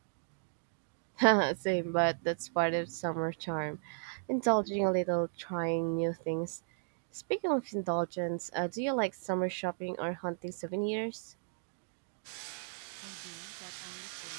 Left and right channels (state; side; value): silent; left; digital silence